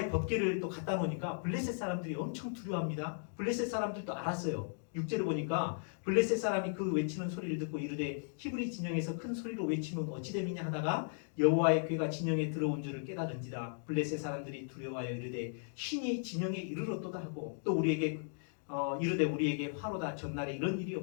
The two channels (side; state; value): right; silent; digital silence